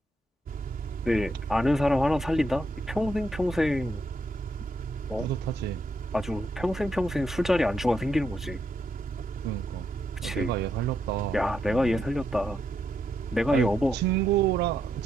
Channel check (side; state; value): both; normal; correlation 0.79